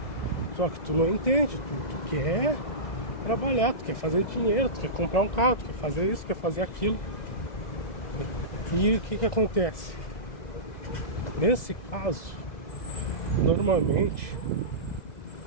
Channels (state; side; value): late; right; 2.0 ms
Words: Só que tu não entende, tu quer trabalhar, tu quer fazer dinheiro, tu quer comprar um carro, tu quer fazer isso, quer fazer aquilo. E o que acontece? Nesse caso, normalmente,